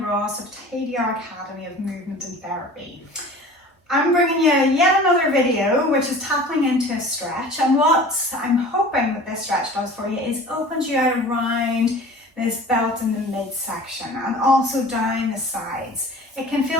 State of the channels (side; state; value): both; normal; correlation 0.42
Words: Ross of TDR Academy of Movement and Therapy. I'm bringing you yet another video which is tapping into a stretch, and what I'm hoping that this stretch does for you is opens you out around this belt in the midsection and also down the sides. It can